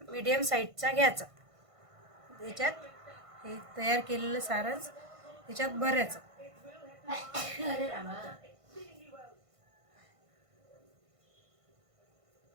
मीडियम साईजचा घ्यायचा. त्याच्यात हे तयार केलेलं सारण त्याच्यात भरायचं.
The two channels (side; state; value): left; late; 1.5 ms